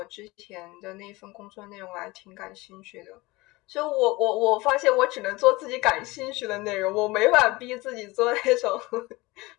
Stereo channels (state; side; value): quieter; right; 21.8 dB